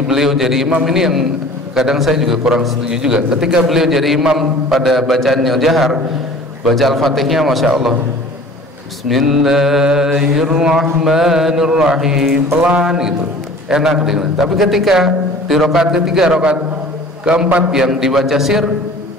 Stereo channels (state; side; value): normal; both; correlation 0.45